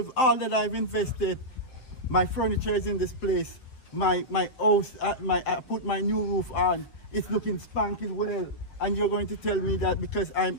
all that I've invested, my furniture is in this place, my house, I put my new roof on, it's looking spanking well, and you're going to tell me that because I'm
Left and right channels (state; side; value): late; right; 7.7 ms